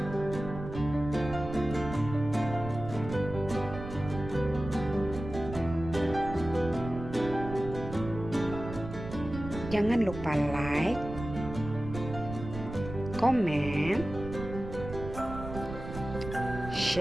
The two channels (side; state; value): right; noise; rumble, 10 dB below the sound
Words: Jangan lupa like, komen,